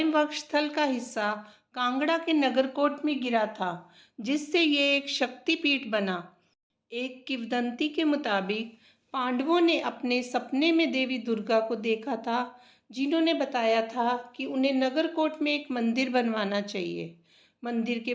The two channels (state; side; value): identical; both; correlation 1.00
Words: वक्षस्थल का हिस्सा कांगड़ा के नगरकोट में गिरा था, जिससे ये एक शक्तिपीठ बना। एक किंवदंती के मुताबिक पांडवों ने अपने सपने में देवी दुर्गा को देखा था, जिन्होंने बताया था कि उन्हें नगरकोट में एक मंदिर बनवाना चाहिए। मंदिर के